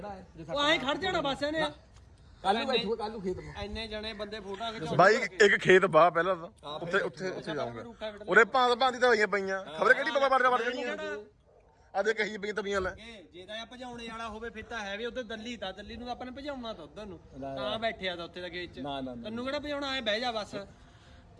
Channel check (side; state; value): both; identical; correlation 1.00